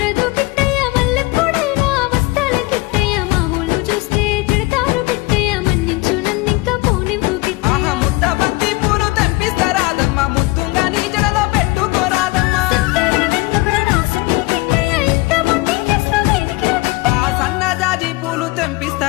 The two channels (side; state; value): right; quieter; 22.6 dB